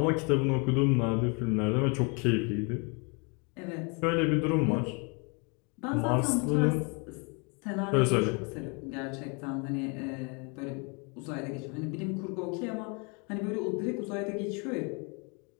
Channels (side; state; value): right; quieter; 33.5 dB